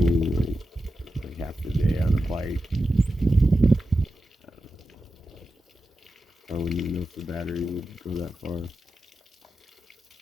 like half the day on a bike. I wouldn't even know if the battery would go that far.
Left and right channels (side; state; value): both; normal; correlation 0.91